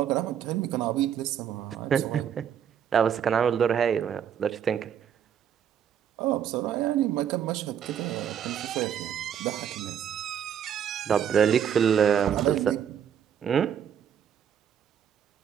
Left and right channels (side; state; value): left; quieter; 8.8 dB